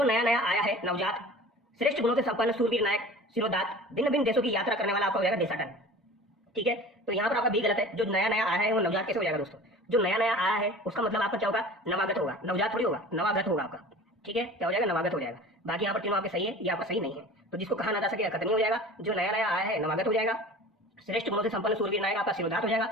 नया नया आया है, नवजात। श्रेष्ठ गुणों से संपन्न, सूरवीर, नायक, सिरोदात। भिन्न भिन्न देशों की यात्रा करने वाला आपका हो जाएगा देशाटन, ठीक है। तो यहाँ पर आपका भी गलत है। जो नया नया आया है वो नवजात कैसे हो जाएगा दोस्तों? जो नया नया आया है उसका मतलब आपका क्या होगा? नवागत होगा, नवजात थोड़ी होगा, नवागत होगा आपका, ठीक है। क्या हो जाएगा? नवागत हो जाएगा। बाकी यहाँ पर तीनों आपके सही है, ये आपका सही नहीं है। तो जिसको कहा ना जा सके अकथनीय हो जाएगा, जो नया नया आया है नवागत हो जाएगा, श्रेष्ठ गुणों से संपन्न, सूरवीर, नायक आपका सिरोदात हो जाएगा,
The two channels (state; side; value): normal; both; correlation 0.40